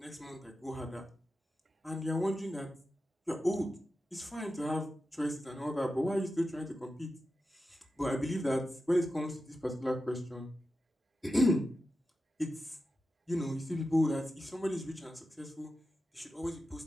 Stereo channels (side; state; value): both; normal; correlation 0.91